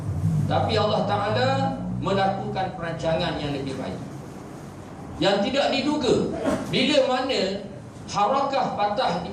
Tapi Allah Ta'ala melakukan perancangan yang lebih baik, yang tidak diduga. Bila mana harakah Fatah di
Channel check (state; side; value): identical; both; correlation 1.00